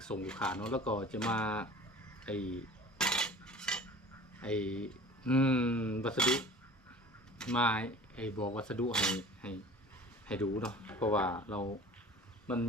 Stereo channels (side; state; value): both; normal; correlation 0.42